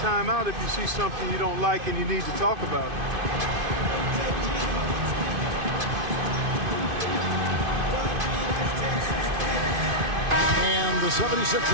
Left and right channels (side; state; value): left; late; 2.5 ms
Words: if you see something you don't like and you need to talk about it. And the